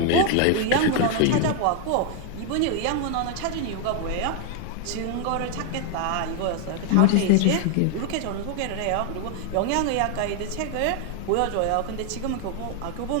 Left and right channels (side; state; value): both; different; correlation 0.00